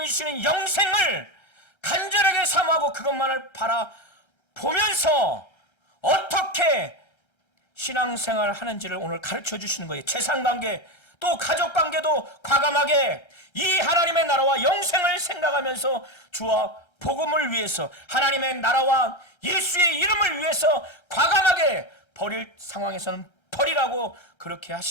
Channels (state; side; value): late; right; 1.3 ms